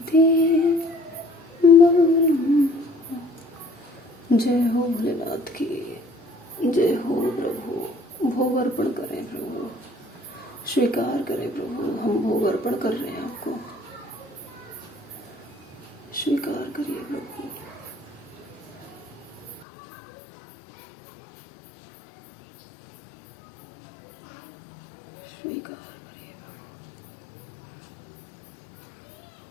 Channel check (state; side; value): drops out; right; at 19.7 s